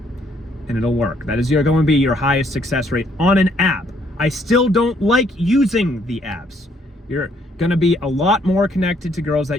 And it'll work. That is going to be your highest success rate on an app. I still don't like using the apps. You're going to be a lot more connected to girls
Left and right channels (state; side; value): normal; both; correlation 0.68